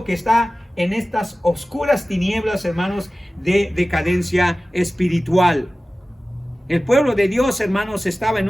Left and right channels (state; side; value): normal; both; correlation 0.96